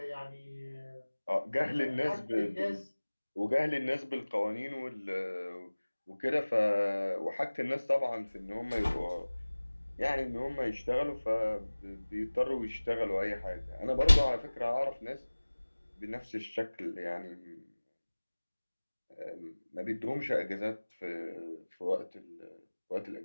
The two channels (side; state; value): both; inverted; correlation -1.00